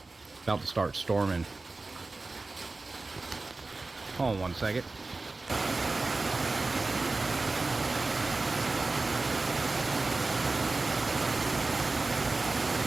About to start storming. Hold on one second.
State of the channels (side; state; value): left; quieter; 3.4 dB